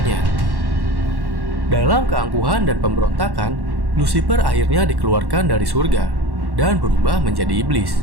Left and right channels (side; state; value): left; late; 1.1 ms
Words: Dalam keangkuhan dan pemberontakan, Lucifer akhirnya dikeluarkan dari surga dan berubah menjadi iblis.